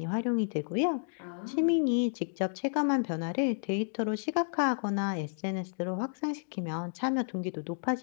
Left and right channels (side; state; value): right; silent; digital silence